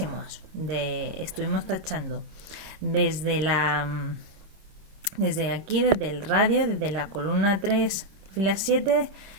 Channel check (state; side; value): late; left; 26 ms